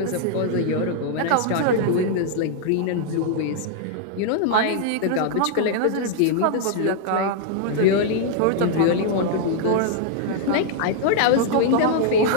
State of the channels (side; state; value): both; different; correlation 0.00